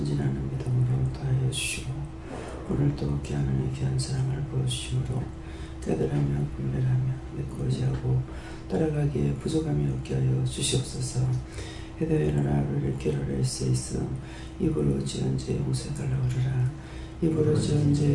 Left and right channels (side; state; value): both; identical; correlation 1.00